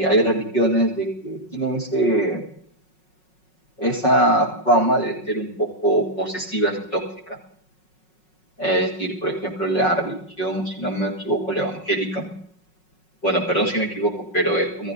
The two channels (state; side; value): late; right; 5.4 ms